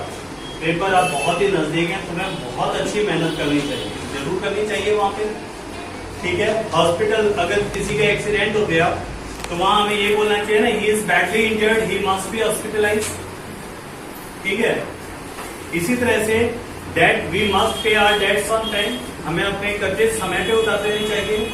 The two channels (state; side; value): identical; both; correlation 1.00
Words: paper आप बहुत ही नजदीक हैं, तुम्हें बहुत अच्छी मेहनत करनी चाहिए, जरूर करनी चाहिए वहां पे, ठीक है। हॉस्पिटल, अगर किसी का एक्सीडेंट हो गया तो वहां हमें ये बोलना चाहिए ना, he is badly injured, he must be hospitalise, ठीक है। इसी तरह से debt, we must pay our debts on time, हमें अपने कर्जे समय पे उतार देने चाहिए।